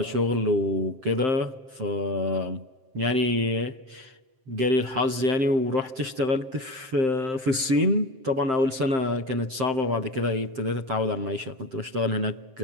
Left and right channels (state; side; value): late; left; 7.7 ms